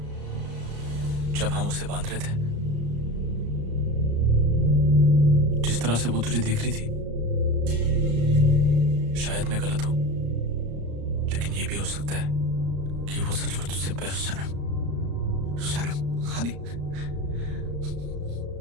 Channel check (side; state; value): left; late; 35 ms